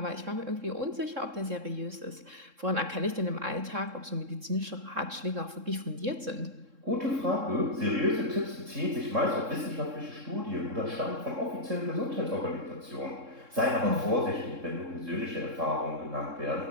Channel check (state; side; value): late; left; 3.7 ms